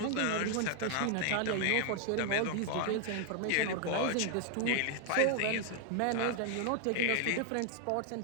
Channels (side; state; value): both; different; correlation 0.00